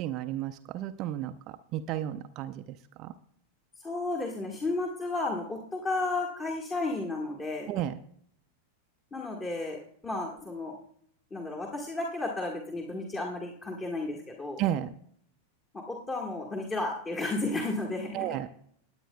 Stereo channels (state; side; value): normal; both; correlation 0.49